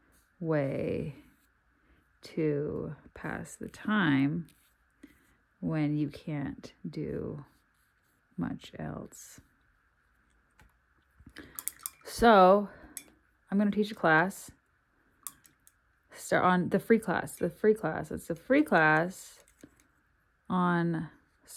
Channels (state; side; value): identical; both; correlation 1.00